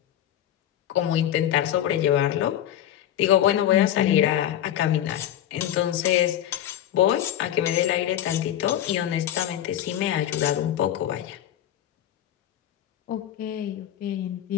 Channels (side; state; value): right; quieter; 11.5 dB